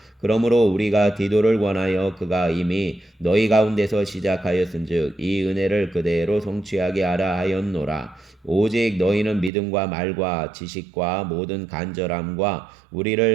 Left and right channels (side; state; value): left; drops out; at 9.5 s